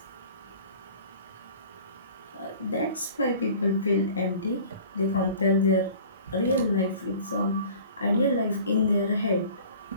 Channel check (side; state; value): both; inverted; correlation -0.46